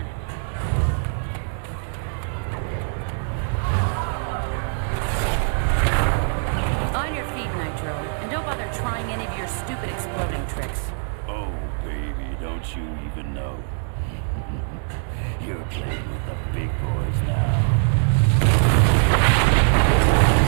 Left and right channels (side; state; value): left; silent; 63 dB below the other